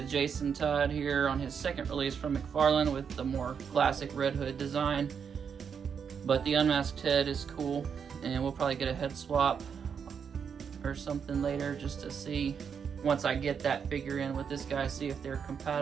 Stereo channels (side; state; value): left; quieter; 6.9 dB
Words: Jason Todd here on his second release from McFarlane with the more classic Red Hood design. But the unmasked head is cool, and we'll probably get a head swap or something later just to see, once I get that figure in with this guy, see if they're